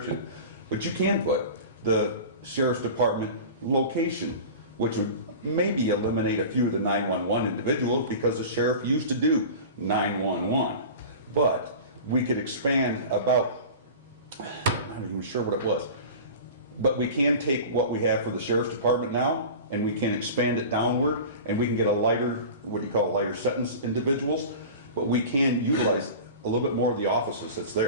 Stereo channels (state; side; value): inverted; both; correlation -0.35